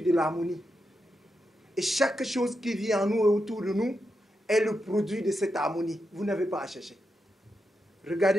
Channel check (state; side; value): normal; both; correlation 0.86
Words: de l'harmonie. Et chaque chose qui vit en nous et autour de nous est le produit de cette harmonie. Vous n'avez pas à chercher.